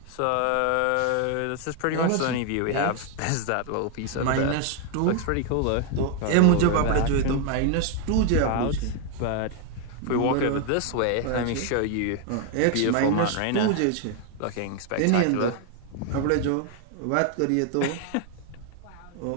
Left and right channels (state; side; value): different; both; correlation 0.00